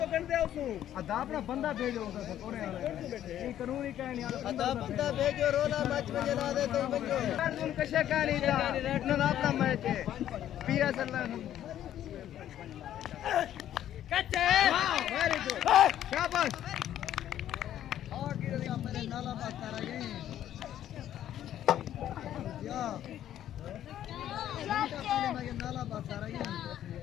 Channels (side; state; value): right; quieter; 11.5 dB